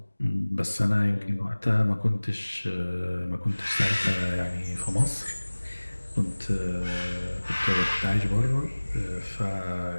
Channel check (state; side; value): inverted; both; correlation -1.00